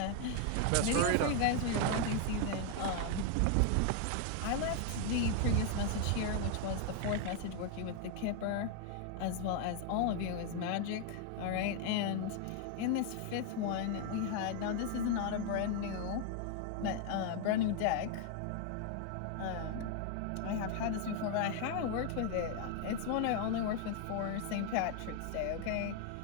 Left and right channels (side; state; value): both; different; correlation 0.00